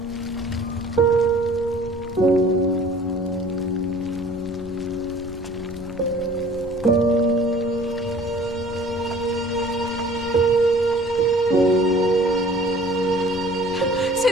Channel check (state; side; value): normal; both; correlation 0.50